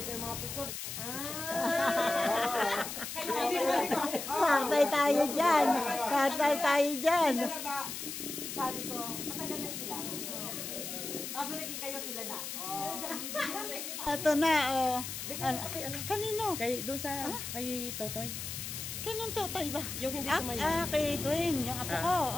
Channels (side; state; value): left; noise; hiss, 6 dB below the sound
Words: ko yung mga picture. Kaya hindi sabi ko, Patay tayo dyan. Patay tayo dyan. sila na ba? Sabi ko, matagal na sila. Bago naging kayo sila na. Ito na, oh. Kanino? Kay, doon sa, kay Totoy. Kanong Totoy ba? Yung hindi sumayaw. Kay Dwayne, yung apo ko.